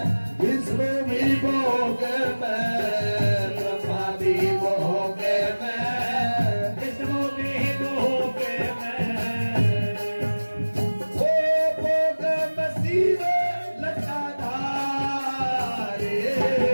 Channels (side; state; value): both; inverted; correlation -1.00